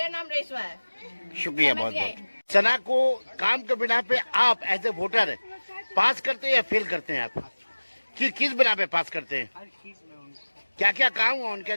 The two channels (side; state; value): both; inverted; correlation -1.00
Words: नाम रेशमा है। शुक्रिया बहुत बहुत। सना को काम के बिना पे आप एज ए वोटर पास करते हैं या फेल करते हैं? आप किस बिना पे पास करते हैं? क्या क्या काम हुआ उनके